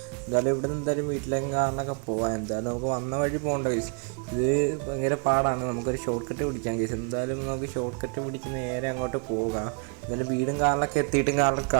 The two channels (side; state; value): left; quieter; 39.3 dB